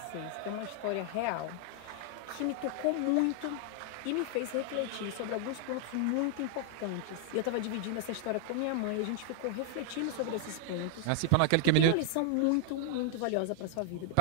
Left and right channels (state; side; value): different; both; correlation 0.00